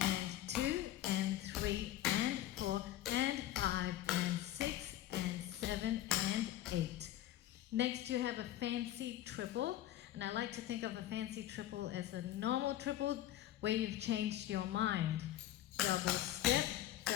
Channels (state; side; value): quieter; right; 13.5 dB